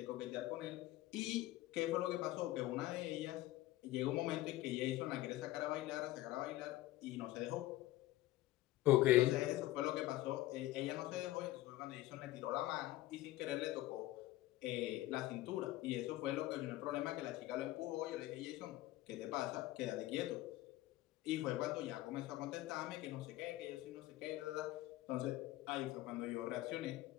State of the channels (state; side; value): quieter; right; 16.6 dB